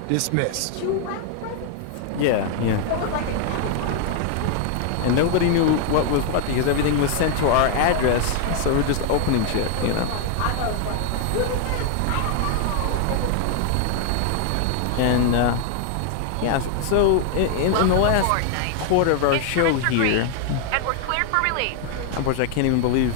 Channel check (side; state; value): both; different; correlation 0.00